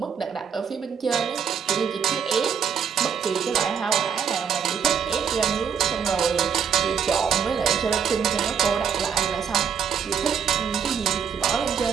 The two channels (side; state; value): left; quieter; 7.3 dB